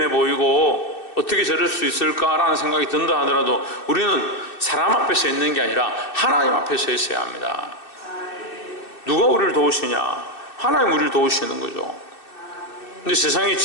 보이고 어떻게 저럴 수 있을까라는 생각이 든다 하더라도 우리는 사람 앞에 서 있는 게 아니라 하나님 앞에 서 있어야 합니다. 누가 우리를 도우시냐? 하나님 우리를 도우시는 거죠. 근데 세상의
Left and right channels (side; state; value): right; late; 2.6 ms